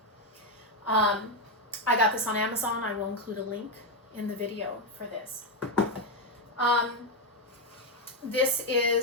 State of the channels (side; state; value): both; normal; correlation 0.06